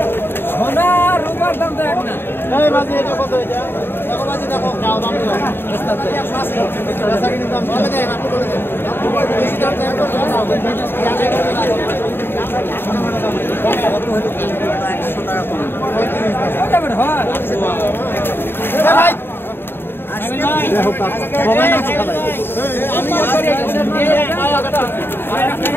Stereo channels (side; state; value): right; late; 0.11 ms